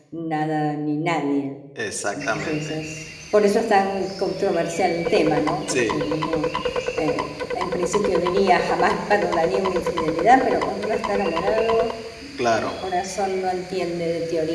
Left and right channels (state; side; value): identical; both; correlation 1.00